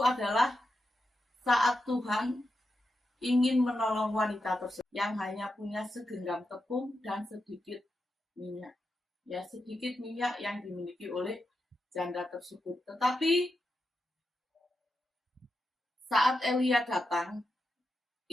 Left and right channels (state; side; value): normal; both; correlation 0.87